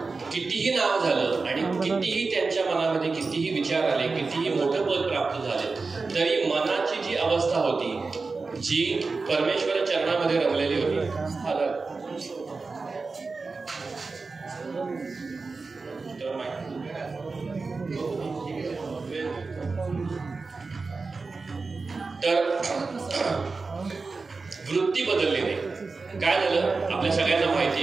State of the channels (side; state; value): left; quieter; 4.1 dB